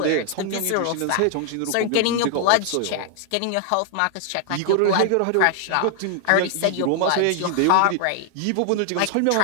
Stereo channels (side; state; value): both; different; correlation 0.00